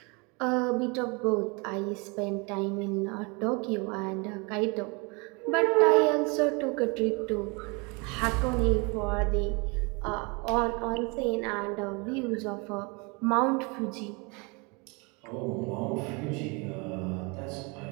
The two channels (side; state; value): left; quieter; 29.9 dB